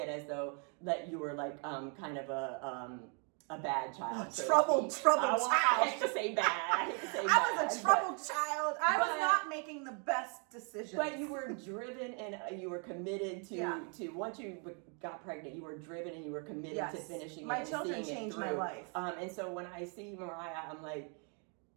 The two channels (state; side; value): quieter; left; 38.7 dB